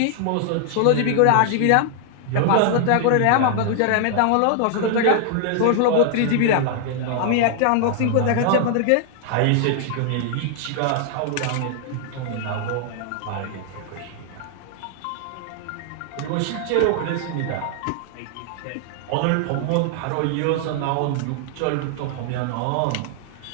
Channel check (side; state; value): both; different; correlation 0.00